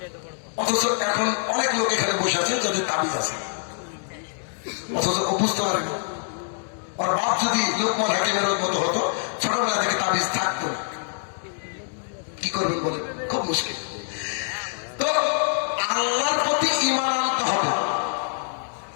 অথচ এখন অনেক লোক এখানে বসে আছেন যাদের তাবিজ আছে, অথচ ও বুঝতে পারেনি। আর বাপ যদি লোকমান হাকিমের মতো হতো, ছোটবেলা থেকে তাবিজ থাকতো না, কি করবেন বলেন? খুব মুশকিল। তো আল্লাহর প্রতি ঈমান আনতে হবে।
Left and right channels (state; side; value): silent; right; digital silence